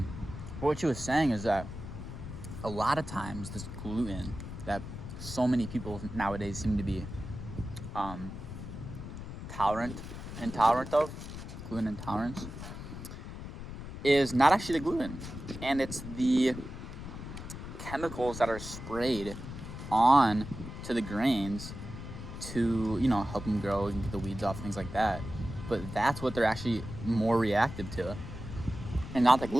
But what she was saying is that a lot of times this gluten that so many people nowadays seem to be intolerant of, gluten intolerance, is not actually the gluten, and it's the chemicals that are sprayed on to the grains to, you know, help them grow and get the weeds off, things like that. But that's what they're actually more reactive to, and not the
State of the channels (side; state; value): left; noise; rumble, 9 dB below the sound